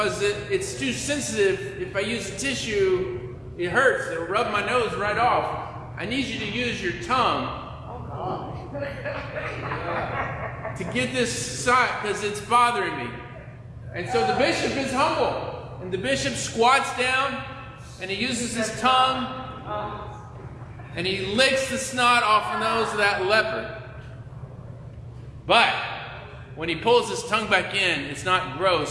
it's too sensitive. If I use a tissue, it hurts. It'll rub my nose right off. I need you to use your tongue to get this snot because it's bothering me." And so the bishop is humble. And the bishop squats down and he uses his tongue and he licks the snot off the nose of that leper. But when he pulls his tongue back in, it's not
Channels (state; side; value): identical; both; correlation 1.00